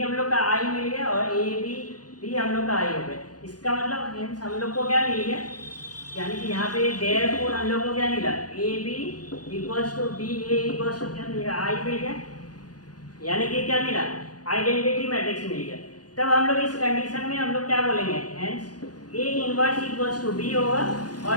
हम लोग का आई मिल गया और ए बी भी हम लोग का आई हो गया। इसका मतलब हेंस हम लोग को क्या मिल गया, यानी कि यहाँ पे देयरफॉर हम लोग को क्या मिला, A B equals to B A equals to क्या मिलेगा आई मिल गया, यानी कि क्या मिला आइडेंटिटी मैट्रिक्स मिल गया। तब हम लोग इस कंडीशन में हम लोग क्या बोलेंगे, hence A inverse equals to B होगा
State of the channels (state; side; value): late; right; 0.69 ms